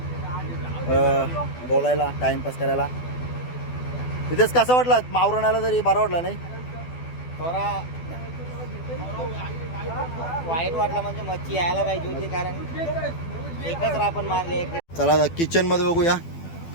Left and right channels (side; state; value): right; late; 12 ms